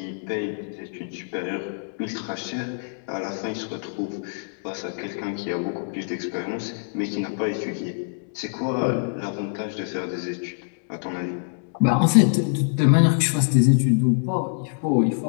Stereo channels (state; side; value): silent; right; digital silence